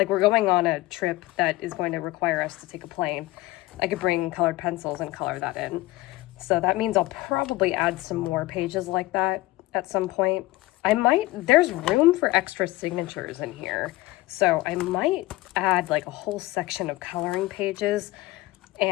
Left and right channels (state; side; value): quieter; right; 19.1 dB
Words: we're going on a trip that is going to require us to take a plane, I could bring colored pencils and color that in. So that means I'll probably add some more pages like that at some point. There's room for extra signatures in here. So I might add like a whole section of coloring pages,